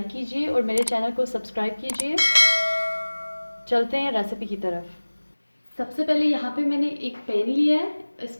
कीजिए और मेरे चैनल को सब्सक्राइब कीजिए। चलते हैं रेसिपी की तरफ। सबसे पहले यहाँ पे मैंने एक पैन लिया है,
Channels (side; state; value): both; inverted; correlation -1.00